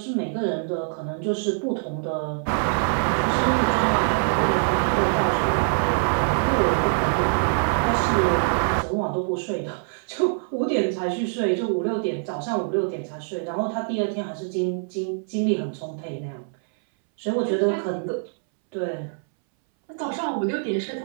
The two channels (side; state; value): left; silent; 62 dB below the other